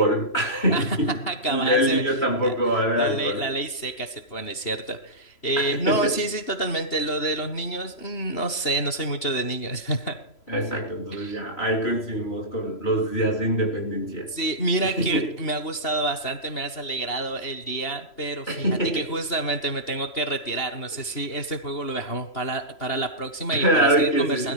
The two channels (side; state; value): right; late; 3.0 ms